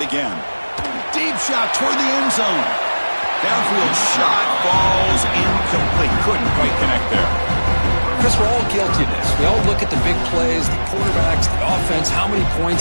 again. Deep shot toward the end zone. Downfield shot falls incomplete. Couldn't quite connect there. Chris, we're all guilty of this. We all look at the big plays, the quarterbacks, the offense, how many points,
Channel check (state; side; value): inverted; both; correlation -1.00